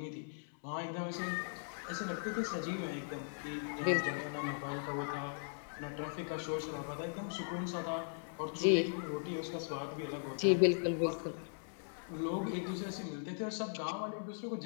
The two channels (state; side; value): silent; right; digital silence